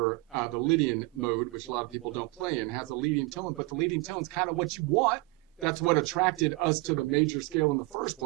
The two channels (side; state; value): left; quieter; 23.7 dB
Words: the Lydian mode, which a lot of people don't play in, has a leading tone, but the leading tone is kind of what you want. That's what attracted us to the major scale in the first